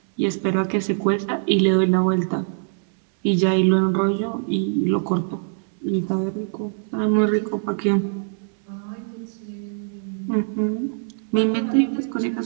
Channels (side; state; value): left; silent; digital silence